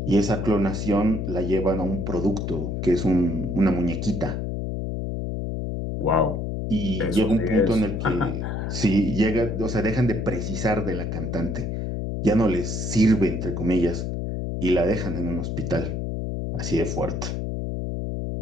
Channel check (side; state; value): left; noise; hum, 3 dB below the sound